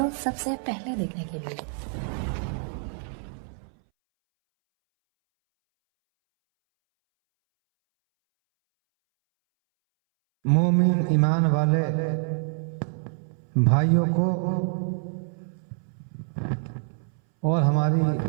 सबसे पहले देखने के लिए। मोमिन ईमान वाले भाइयों को और हमारी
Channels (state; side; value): silent; left; 61 dB below the other